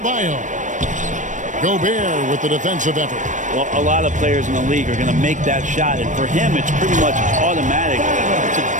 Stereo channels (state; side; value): late; left; 0.37 ms